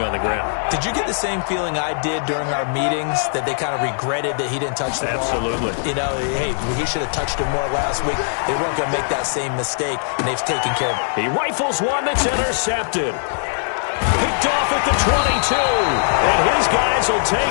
on the ground. Did you get the same feeling I did during our meetings, that they kind of regretted that he didn't touch the ball? Absolutely. You know, hey, he should have touched it more last week. They weren't going to make that same mistake, and they've taken care of it. He rifles one that's intercepted. Picked off at the 22, and his guys will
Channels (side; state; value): right; silent; digital silence